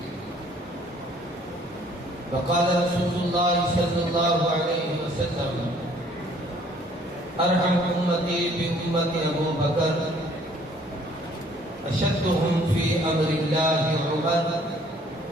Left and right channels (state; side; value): normal; both; correlation 0.59